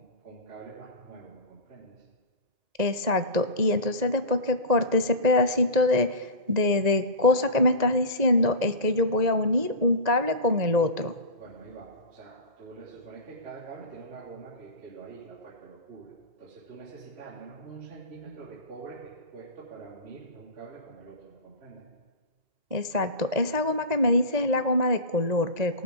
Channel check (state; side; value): late; left; 2.0 ms